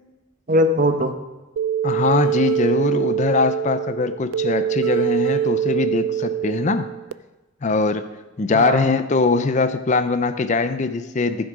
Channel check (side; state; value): both; normal; correlation 0.20